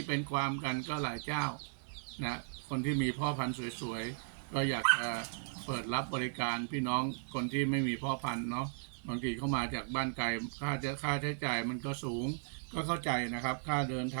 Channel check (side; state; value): left; silent; digital silence